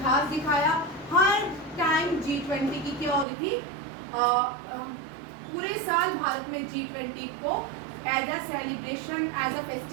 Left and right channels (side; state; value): left; drops out; at 3.2 s